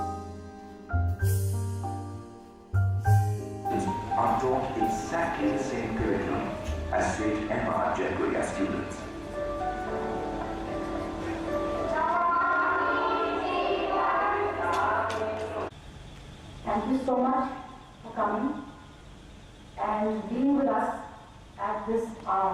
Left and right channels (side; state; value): both; identical; correlation 1.00